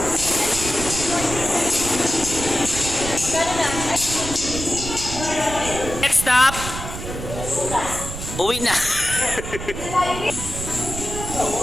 Next stop. Uwi na.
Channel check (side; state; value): right; noise; rumble, 8 dB below the sound